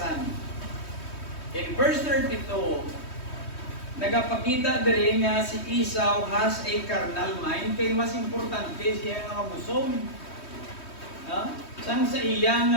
In verse 32, nagapakita diri nga si Esau has a carnal mind, kay mas importante siya nga mabusog. Sang sa iya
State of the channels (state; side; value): late; right; 3.2 ms